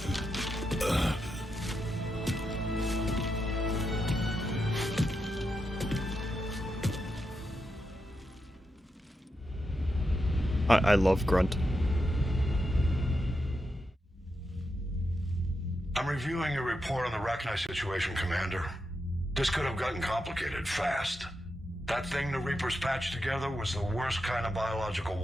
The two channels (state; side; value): normal; both; correlation 0.86